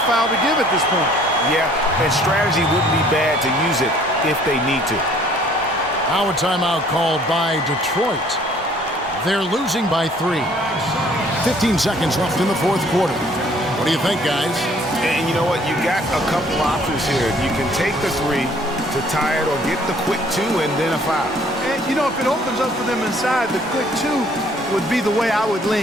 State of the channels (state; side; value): normal; both; correlation 0.58